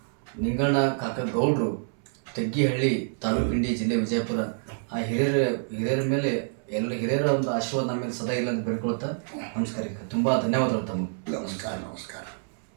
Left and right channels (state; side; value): silent; left; 60 dB below the other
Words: ನಿಂಗಣ್ಣ ಕಾಕ ಗೌಡ್ರು, ತೆಗ್ಗಿಹಳ್ಳಿ ತಾಲೂಕು ಇಂಡಿ ಜಿಲ್ಲೆ ವಿಜಯಪುರ. ಆ ಹಿರಿಯರ ಮೇಲೆ ಹಿರಿಯರ ಒಂದು ಆಶೀರ್ವಾದ ನಮ್ಮ ಮೇಲೆ ಸದಾ ಇಲ್ಲ ಅಂತ ಬೇಡ್ಕೊಳ್ತಾ ನಮಸ್ಕಾರ. ತುಂಬ ಧನ್ಯವಾದಗಳು ತಮಗೆ. ನಮಸ್ಕಾರ.